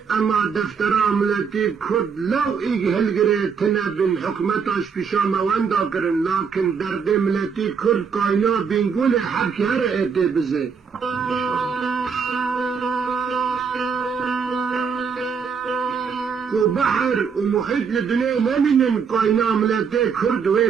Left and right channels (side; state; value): left; quieter; 6.1 dB